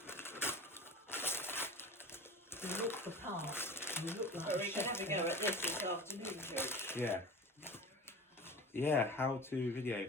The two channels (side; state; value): both; normal; correlation 0.35